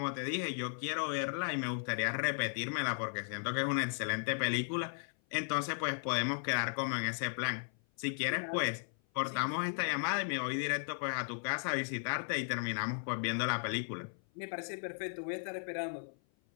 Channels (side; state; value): right; silent; 54 dB below the other